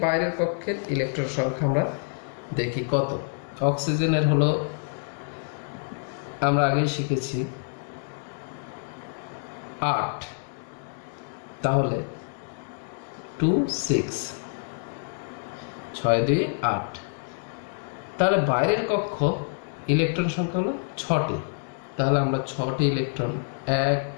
বাইরের কক্ষের ইলেকট্রন সংখ্যা আমরা দেখি কত। অক্সিজেনের হলো আমরা আগেই শিখেছি 8, তাহলে 2, 6, 6, 2, 8। তাহলে বাইরের কক্ষ ইলেকট্রন সংখ্যা হলো 6টি, তাহলে আমরা 6টি ইলেকট্রন 1,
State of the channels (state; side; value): silent; right; 60 dB below the other